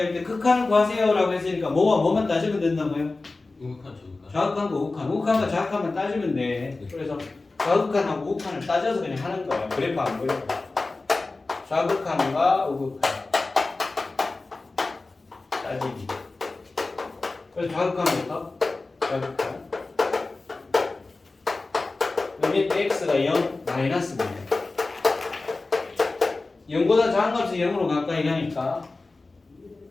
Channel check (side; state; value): right; quieter; 3.4 dB